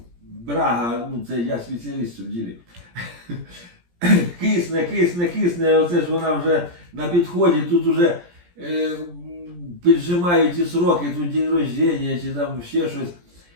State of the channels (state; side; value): late; left; 17 ms